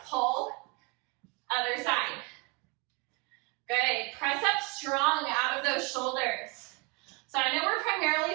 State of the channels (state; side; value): quieter; left; 28.6 dB